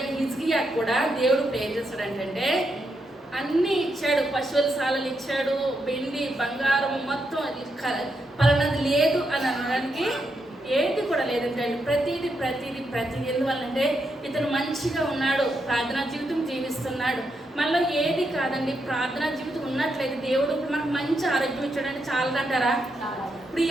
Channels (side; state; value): both; normal; correlation 0.82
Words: హిజ్కియా కూడా దేవుడు ఇప్పుడు ఏం చేస్తాడంటే అన్నీ ఇచ్చాడు, పశువుల సాలలు ఇచ్చాడు, వెండి బంగారం మొత్తం పలానది లేదు అని అనడానికి ఏది కూడా లేదంటే ప్రతిదీ ఎందువల్లంటే ఇతను మంచిగా ఉన్నాడు, ప్రార్థనా జీవితం జీవిస్తున్నాడు. మళ్ళీ ఏది కాదండి, ప్రార్థనా జీవితం ఉన్నట్లయితే దేవుడు ఇప్పుడు మనకు మంచి ఆరోగ్యం ఇచ్చాడంటే చాలదంటారా? ఇప్పుడు ఈ